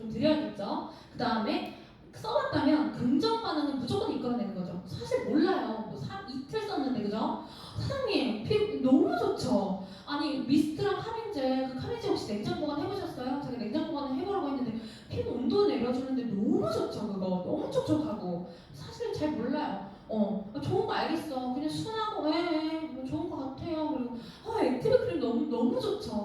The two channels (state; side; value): identical; both; correlation 1.00